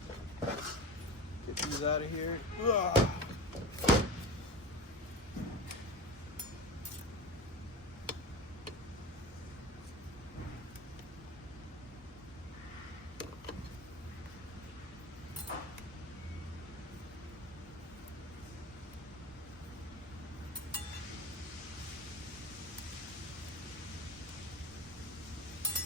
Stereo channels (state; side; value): normal; both; correlation 0.28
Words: get these out of here. Ugh.